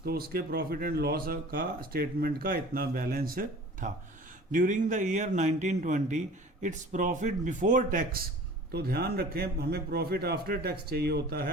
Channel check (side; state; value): both; normal; correlation 0.43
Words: तो उसके प्रॉफिट एंड लॉस का स्टेटमेंट का इतना बैलेंस था। During the year 1920 its profit before tax, तो ध्यान रखें हमें प्रॉफिट आफ्टर टैक्स चाहिए होता